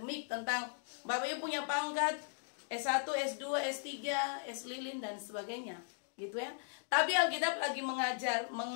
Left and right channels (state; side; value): silent; right; digital silence